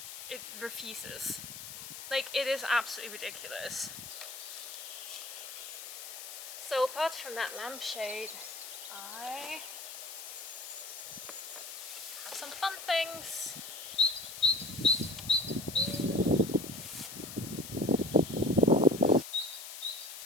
It refuses. Like, it is absolutely ridiculous. So apart from that lampshade, I have some fun things.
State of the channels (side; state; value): left; noise; hiss, 10 dB below the sound